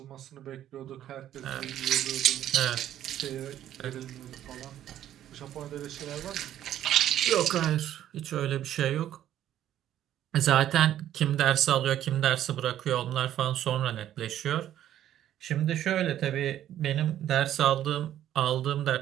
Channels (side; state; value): left; quieter; 11.7 dB